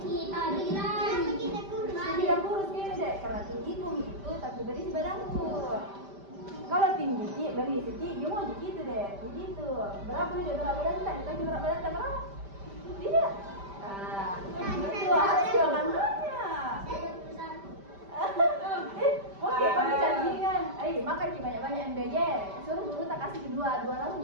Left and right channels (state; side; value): late; left; 5.1 ms